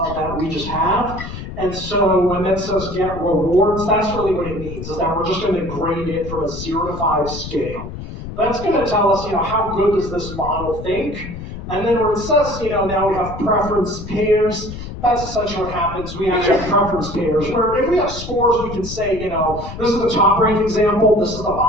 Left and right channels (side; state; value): left; noise; rumble, 10 dB below the sound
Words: that we just have. And so when that says get rewards, that's really what it means, is that we're just going to grade it from a 0 to 5 scale. That's going to tell us, how good does this model think? And then where it says, now we have preference pairs, that's essentially what happens. We actually have preference pairs, where if we have scores, we can say, this is the top rank example, this is the